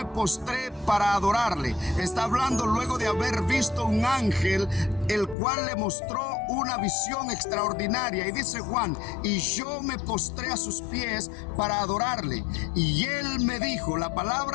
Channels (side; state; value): right; drops out; at 5.4 s